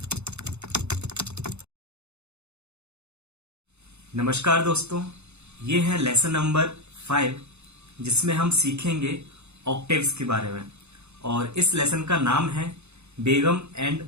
नमस्कार दोस्तों, ये है लेसन नंबर 5 जिसमें हम सीखेंगे ऑक्टेव्स के बारे में। और इस लेसन का नाम है बेगम एंड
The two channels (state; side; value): late; left; 0.81 ms